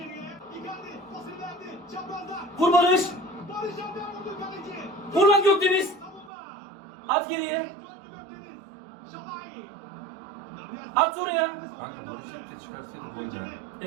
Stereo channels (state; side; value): drops out; left; at 6.3 s